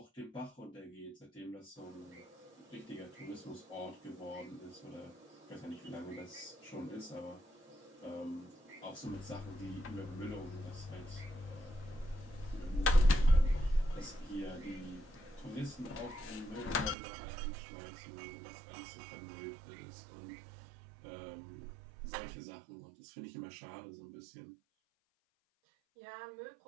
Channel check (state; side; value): drops out; left; at 16.9 s